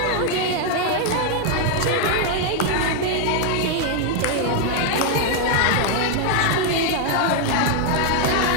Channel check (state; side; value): different; both; correlation 0.00